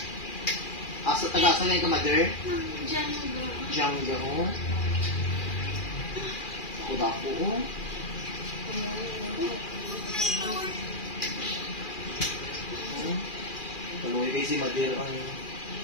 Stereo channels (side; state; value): right; late; 2.4 ms